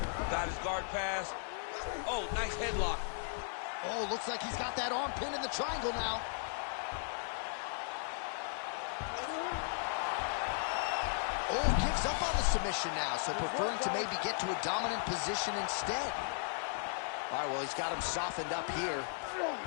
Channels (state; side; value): silent; right; digital silence